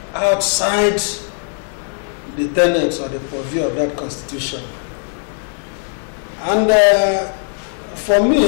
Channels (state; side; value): silent; right; 60 dB below the other